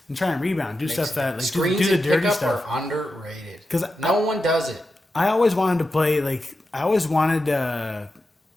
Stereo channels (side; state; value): both; normal; correlation 0.90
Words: And try and rebound, do stuff that like do the dirty stuff. Are underrated because no one does it. I always wanted to play like I always wanted